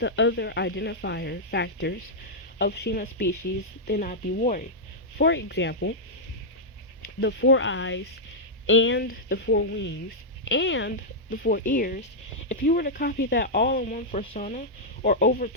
other identifier factors of Shima species, then I'd be worried. For example, the 4 eyes and the 4 wings and the 4 ears, if you were to copy that all in one persona or over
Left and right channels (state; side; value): normal; both; correlation -0.07